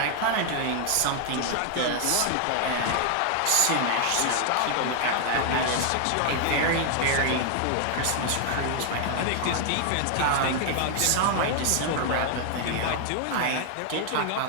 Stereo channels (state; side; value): different; both; correlation 0.00